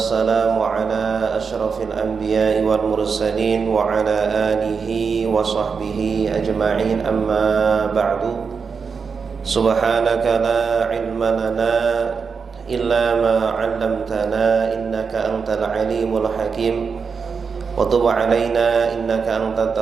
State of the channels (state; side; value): quieter; left; 5.6 dB